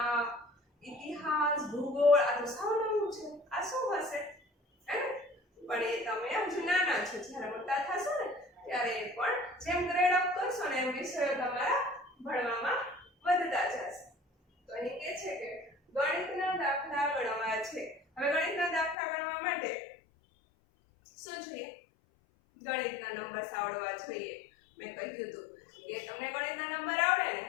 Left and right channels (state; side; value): drops out; right; at 18.9 s